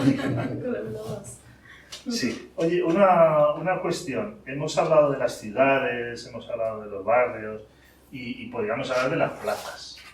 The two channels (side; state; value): both; identical; correlation 1.00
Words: Sí. Oye, una cuestión. Hemos hablado de las ciudades, hemos hablado de los barrios y podríamos hablar de las plazas.